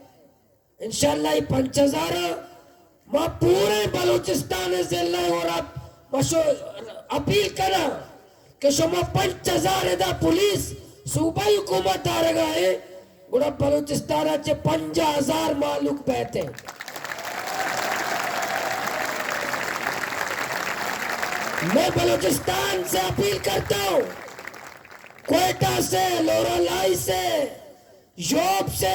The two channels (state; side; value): identical; both; correlation 1.00